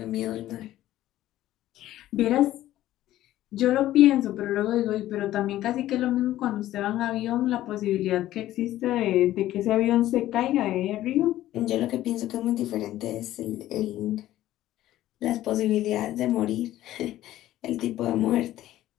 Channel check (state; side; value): quieter; right; 14.2 dB